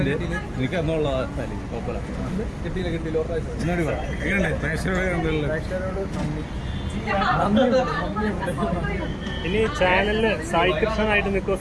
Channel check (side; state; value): both; identical; correlation 1.00